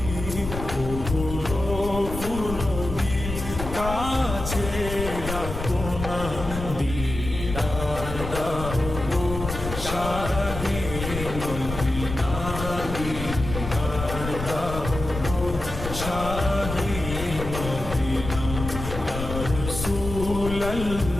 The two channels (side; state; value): left; noise; rumble, 7 dB below the sound